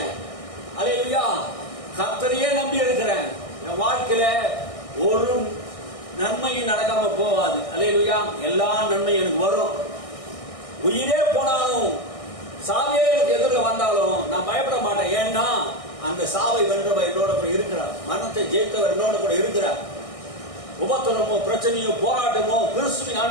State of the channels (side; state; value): right; late; 1.6 ms